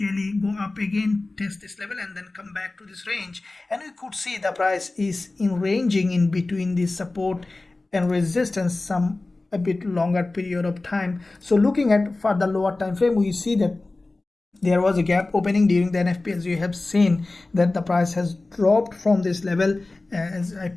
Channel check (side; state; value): right; quieter; 3.1 dB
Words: go up again, test this level and then come back to this range, and we could see the price is ranging in between this support and resistance some a bit longer period of time. So looking at for the lower time frame, we see that there was a gap opening during the NFP, as you have seen that the price has dropped from this level. As I